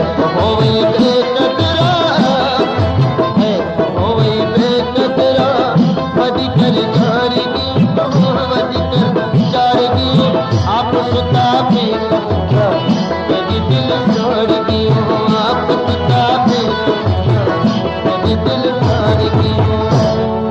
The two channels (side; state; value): both; identical; correlation 1.00